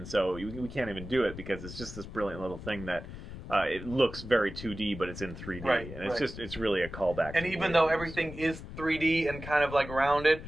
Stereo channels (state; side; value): noise; left; rumble, 11 dB below the sound